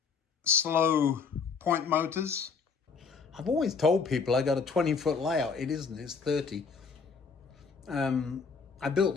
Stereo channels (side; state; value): right; quieter; 5.4 dB